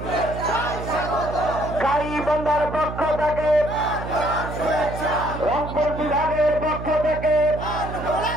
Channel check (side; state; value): right; noise; hum, 8 dB below the sound